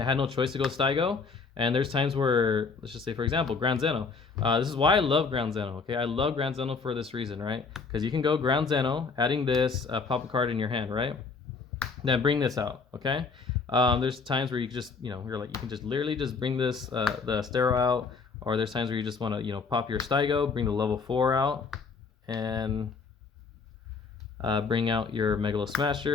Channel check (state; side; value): quieter; right; 4.8 dB